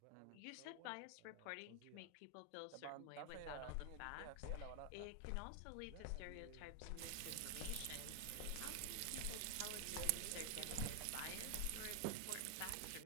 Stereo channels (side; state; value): both; different; correlation 0.00